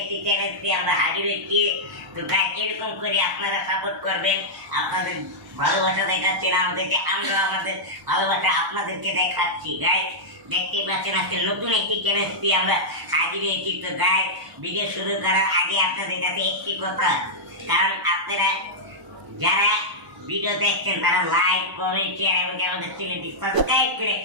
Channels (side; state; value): left; late; 1.0 ms